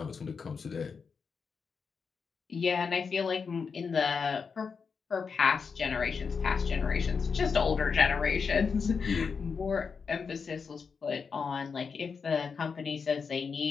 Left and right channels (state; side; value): quieter; right; 5.6 dB